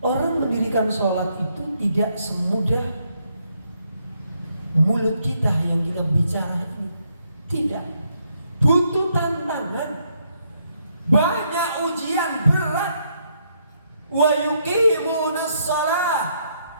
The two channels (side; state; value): both; inverted; correlation -0.74